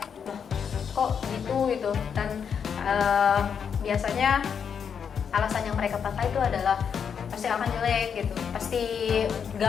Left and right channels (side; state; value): right; quieter; 7.1 dB